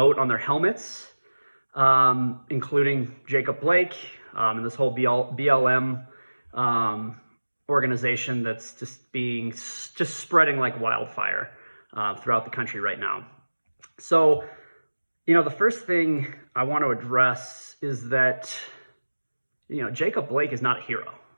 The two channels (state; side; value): inverted; both; correlation -1.00